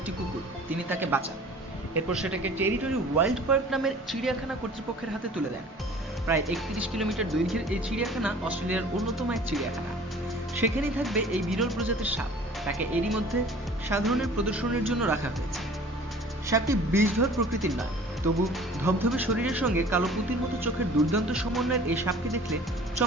কুকুর, তিনি তাকে বাঁচান। এরপর সেটাকে টেরিটরি ওয়াইল্ড পার্ক নামের চিড়িয়াখানা কর্তৃপক্ষের হাতে তুলে দেন। প্রায় 31 কিলোমিটার দৈর্ঘ্যের এই চিড়িয়াখানা অস্ট্রেলিয়ার অন্যতম এক চিড়িয়াখানা। সেখানেই থাকবে এই বিরল প্রজাতির সাপ। তাকে এরই মধ্যে সাধারণের প্রদর্শনের জন্য রাখা হয়েছে। সাপটি বিষধর প্রকৃতির নয়, তবু ধবধবে শরীরের সঙ্গে কালো পুঁতির মতো চোখের দুর্দান্ত সমন্বয়ের এই সাপকে দেখলে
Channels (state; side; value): normal; both; correlation 0.47